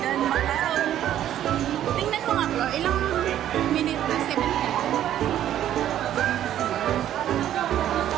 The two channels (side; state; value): left; quieter; 11.5 dB